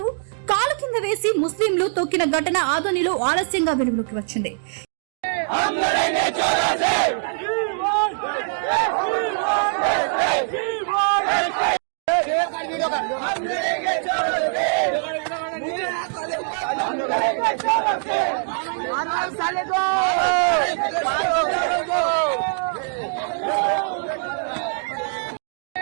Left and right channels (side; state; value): left; silent; digital silence